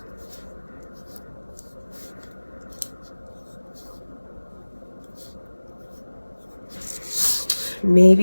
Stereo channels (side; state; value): both; inverted; correlation -1.00